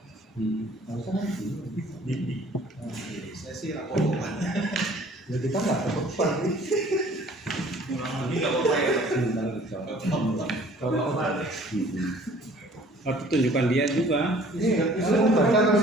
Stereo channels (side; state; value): both; normal; correlation 0.53